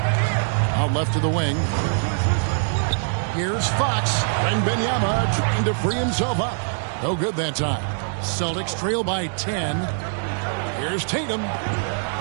Out left to the wing. Here's Fox. And Benyama trying to free himself up. No good that time. Celtics trail by 10. Here's Tatum.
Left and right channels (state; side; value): silent; left; digital silence